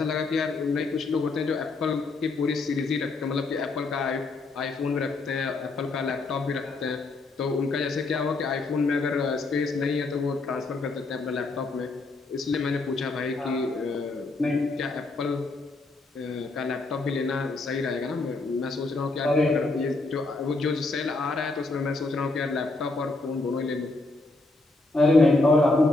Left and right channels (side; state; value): right; quieter; 3.3 dB